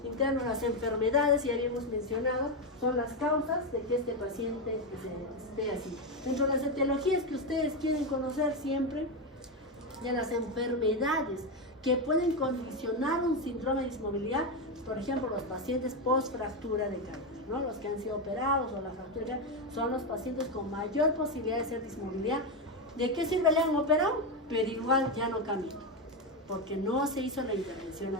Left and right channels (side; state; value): both; normal; correlation 0.09